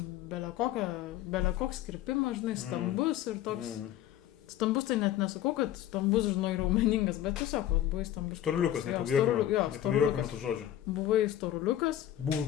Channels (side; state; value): right; quieter; 12.3 dB